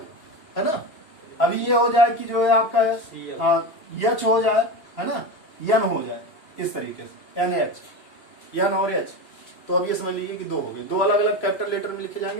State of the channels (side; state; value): right; late; 2.8 ms